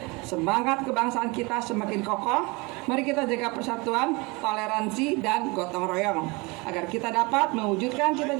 semangat kebangsaan kita semakin kokoh. Mari kita jaga persatuan, toleransi, dan gotong royong agar kita dapat mewujudkan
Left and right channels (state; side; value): quieter; left; 26.6 dB